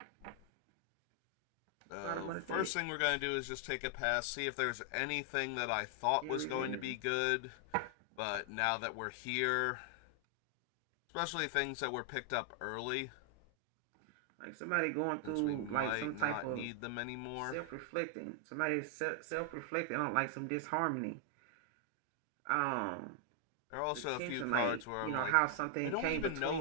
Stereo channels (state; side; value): different; both; correlation 0.00